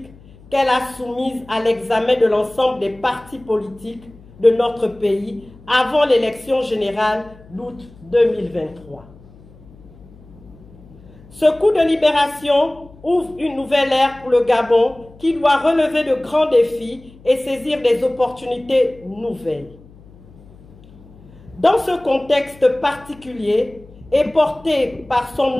qu'elle a soumise à l'examen de l'ensemble des partis politiques de notre pays avant l'élection générale d'août 2023. Ce coup de libération ouvre une nouvelle ère pour le Gabon qui doit relever de grands défis et saisir des opportunités nouvelles. Dans ce contexte particulier et porté par son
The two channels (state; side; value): noise; left; hum, 23 dB below the sound